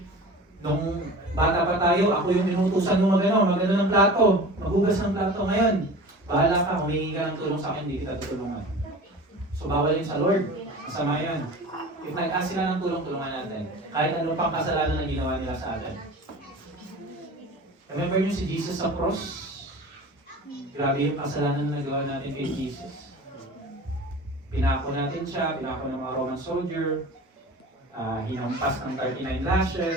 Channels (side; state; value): both; normal; correlation 0.37